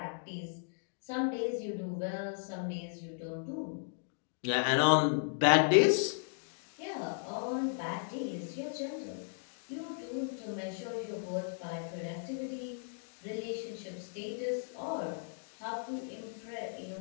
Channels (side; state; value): right; silent; digital silence